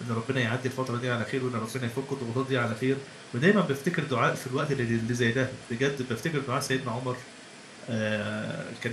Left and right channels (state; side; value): identical; both; correlation 1.00